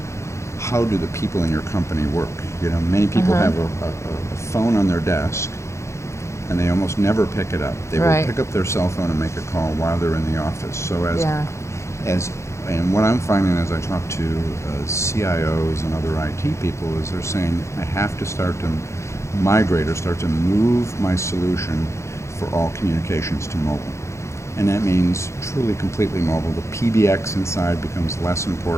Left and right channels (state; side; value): late; right; 0.14 ms